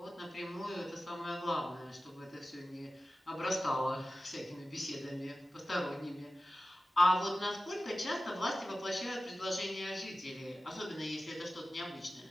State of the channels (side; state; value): both; normal; correlation 0.95